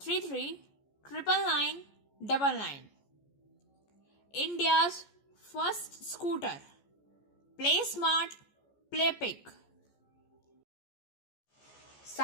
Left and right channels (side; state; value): right; late; 14 ms